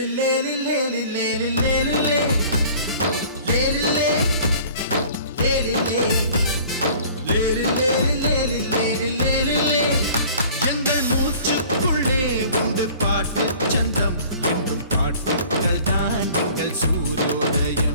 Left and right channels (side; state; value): both; inverted; correlation -0.48